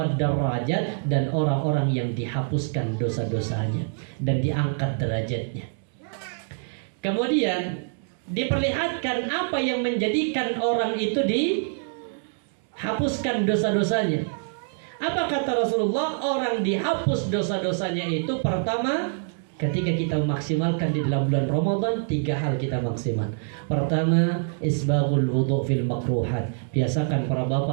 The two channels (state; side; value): silent; left; digital silence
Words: darajat, dan orang-orang yang dihapuskan dosa-dosanya dan diangkat derajatnya. Kemudian diperlihatkan apa yang menjadikan orang itu dihapuskan dosa-dosanya. Apa kata Rasulullah? Orang dihapus dosa-dosanya itu pertama, ketika kita memaksimalkan di dalam bulan Ramadan, 3 hal kita maksimal. Pertama, isbaghul wudu' fil makruhat. Biasakan para